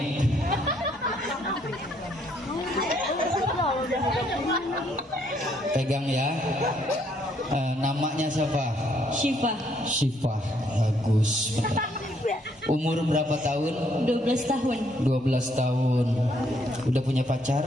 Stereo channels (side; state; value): both; normal; correlation 0.69